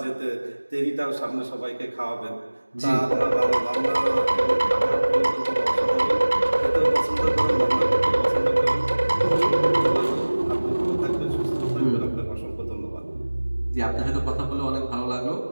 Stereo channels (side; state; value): both; inverted; correlation -1.00